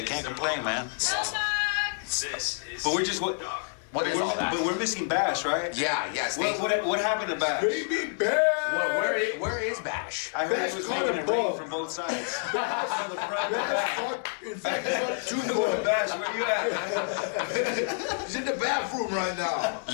I can't complain, man. But we're just What is all that? But we're missing Bash, right? Yeah. What happened to Bash? Baby Bash! Where is Bash? I heard he was making it rain from both sides. On the front and back. In fact, it's on 2 Bash, where you at? He's in the bathroom right now.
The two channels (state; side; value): silent; right; digital silence